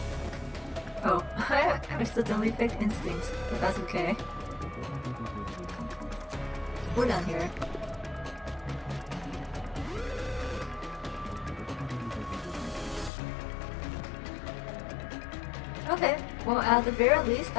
Oh, I accidentally picked instincts, but that's okay. We're done here. Okay, well at the very least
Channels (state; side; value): drops out; right; at 13.1 s